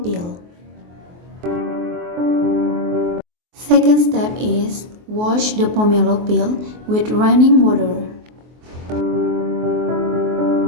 peel. Second step is wash the pomelo peel with running water.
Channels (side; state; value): left; late; 23 ms